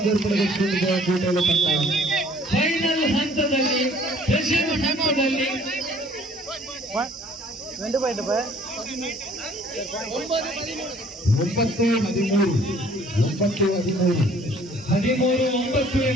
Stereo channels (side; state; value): both; normal; correlation 0.56